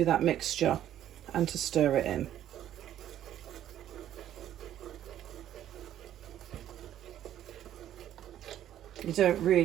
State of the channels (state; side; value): quieter; left; 11.6 dB